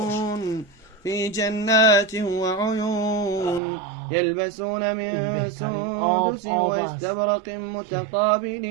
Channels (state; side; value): drops out; left; at 3.6 s